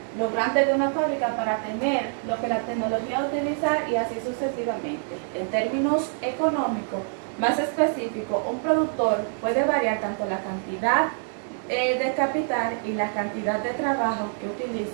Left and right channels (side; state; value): left; silent; 61 dB below the other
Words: Lo grande de una fábrica para tener lo que la tecnología utiliza y así sucesivamente. En términos económicos más específicos, un productor puede variar tanto la cantidad de capital y la cantidad de trabajo que